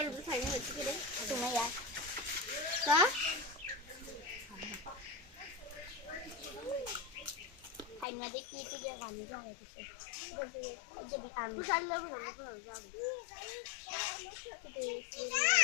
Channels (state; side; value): drops out; right; at 8.1 s